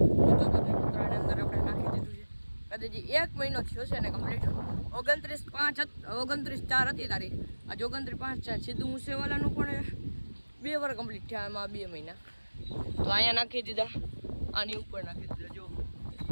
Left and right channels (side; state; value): both; inverted; correlation -1.00